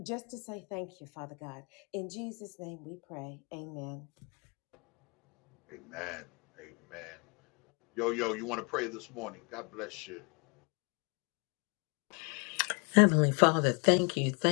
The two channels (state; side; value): quieter; right; 33.0 dB